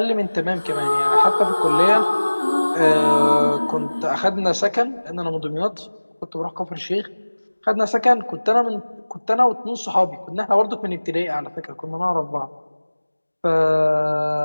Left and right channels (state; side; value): inverted; both; correlation -1.00